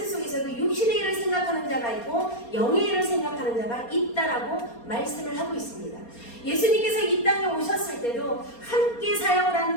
속에서도 육신의 일을 생각하는 자가 있고 영의 일을 생각하는 자가 있다라고 말씀을 하고 있습니다. 예수님께서 이 땅에 오셨을 때도 함께 사역을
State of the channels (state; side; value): late; right; 4.3 ms